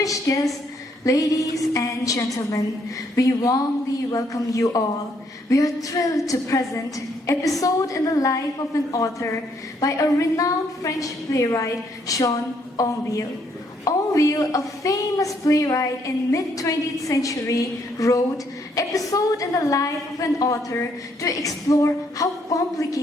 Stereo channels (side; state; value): both; normal; correlation 0.71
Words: guests, ladies and gentlemen, we warmly welcome you all. We are thrilled to present Episode in the Life of an Author by a renowned French playwright, Jean Onville. Onville, a famous playwright in mid-20th century, wrote Episode in the Life of an Author to explore how